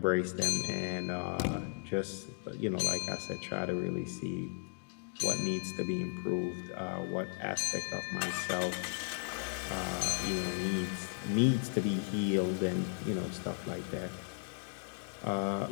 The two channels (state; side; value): silent; right; 54 dB below the other